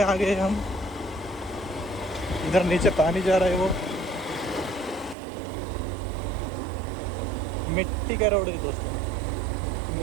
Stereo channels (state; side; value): drops out; left; at 5.2 s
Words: आ गए हम इधर नीचे पानी जा रहा है वो मिट्टी का रोड है दोस्तों